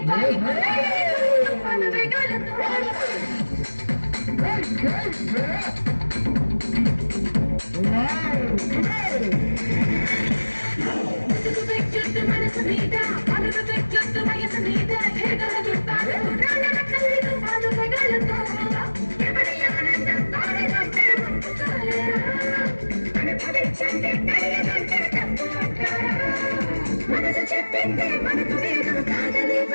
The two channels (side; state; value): both; inverted; correlation -1.00